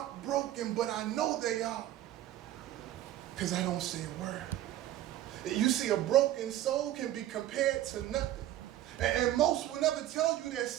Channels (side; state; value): left; quieter; 13.4 dB